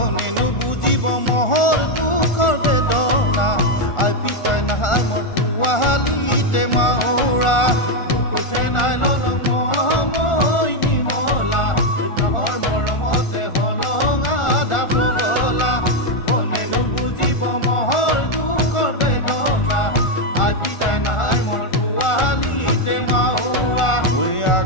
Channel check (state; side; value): late; right; 1.4 ms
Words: বুজিব মহৰ দুখৰ বেদনা আই পিতাই নাই মোৰ পোৱালিতে মাউৰা বুকুঠে নাই ললং মৰমৈ নিমলা তহৰ মৰমতে হলঙা ধাপ গলা কোনেনো বুজিব মহৰ দুখৰ বেদনা আই পিতাই নাই মোৰ পোৱালিতে মাউৰা ঐ